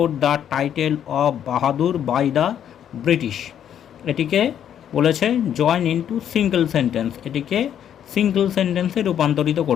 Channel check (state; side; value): quieter; right; 9.6 dB